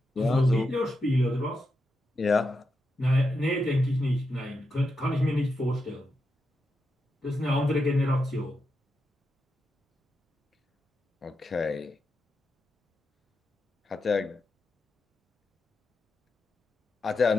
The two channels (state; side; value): normal; both; correlation 0.86